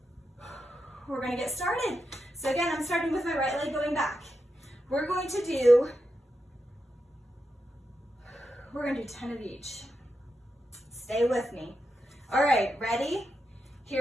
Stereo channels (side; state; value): both; normal; correlation 0.87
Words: We're gonna get started. So again, I'm starting with my right leg going back. We're gonna do 10 of each. Stay with me. All right, ready?